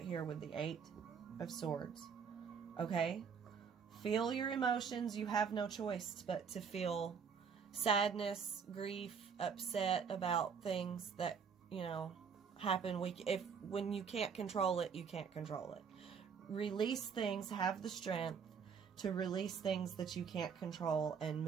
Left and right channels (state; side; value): quieter; left; 6.4 dB